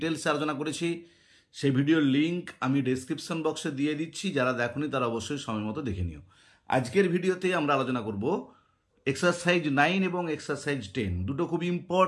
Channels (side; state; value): both; identical; correlation 1.00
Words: আলোচনা করেছি। সেই ভিডিওর লিঙ্ক আমি ডেসক্রিপশন বক্সে দিয়ে দিচ্ছি, যারা দেখোনি তারা অবশ্যই সময় মতো দেখে নিও। আজকের ভিডিওতে আমরা আলোচনা করব এক্সারসাইজ 9 এবং এক্সারসাইজ 10, দুটো খুব